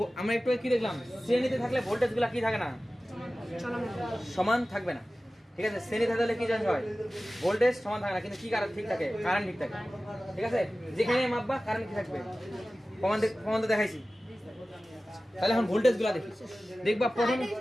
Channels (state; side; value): normal; both; correlation 0.96